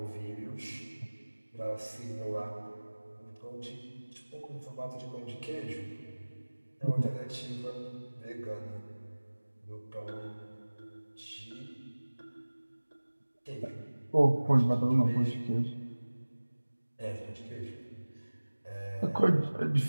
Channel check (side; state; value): both; inverted; correlation -1.00